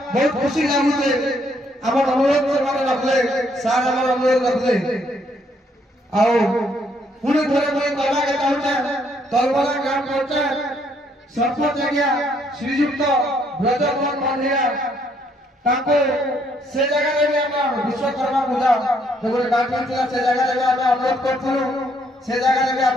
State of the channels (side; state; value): both; normal; correlation 0.69